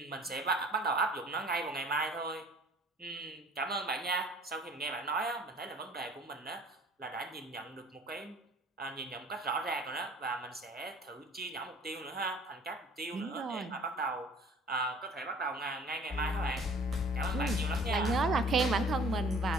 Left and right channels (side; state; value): both; normal; correlation 0.51